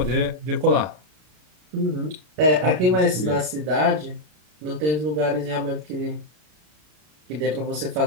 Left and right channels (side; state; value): left; late; 33 ms